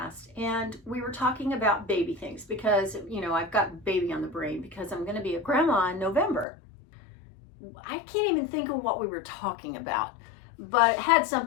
and we were talking about baby things because, you know, I've got baby on the brain because I'm going to be a grandma in November. I can't even think of what we were talking about, but it had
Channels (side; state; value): right; drops out; at 6.5 s